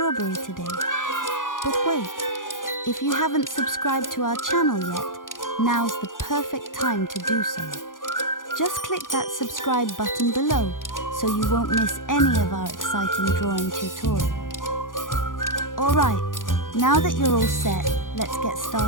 today? But wait, if you haven't subscribed to our channel yet, now's the perfect time to do so. Just click that subscribe button below so you won't miss any of our exciting drawing tutorials. Alright, now that you're all set, let's get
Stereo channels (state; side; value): late; right; 0.89 ms